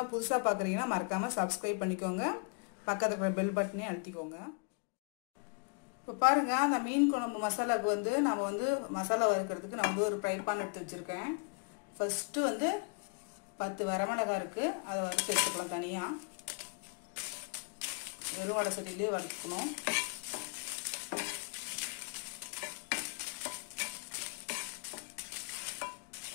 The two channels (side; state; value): right; quieter; 37.4 dB